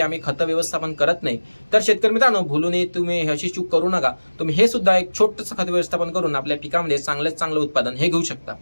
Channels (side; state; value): both; inverted; correlation -1.00